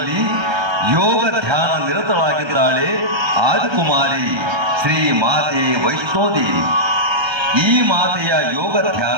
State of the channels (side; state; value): left; late; 1.3 ms